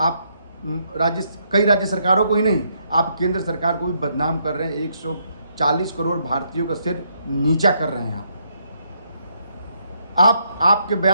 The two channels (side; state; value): both; inverted; correlation -0.74